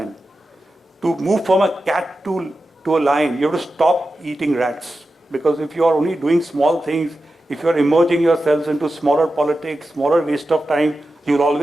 To move from a cat to a lion, you have to stop eating rats. Because if you are only doing small things, if you are immersing yourselves into smaller politics, smaller waste of time, you will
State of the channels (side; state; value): both; normal; correlation 0.92